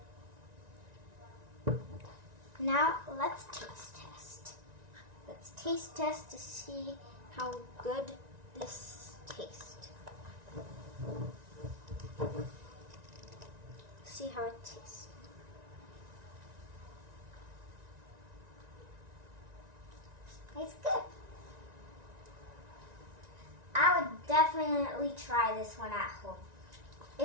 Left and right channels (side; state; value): left; late; 1.9 ms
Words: Now let's taste test. Let's taste test to see how good this tastes. See how it tastes. It's good. I would definitely try this one at home.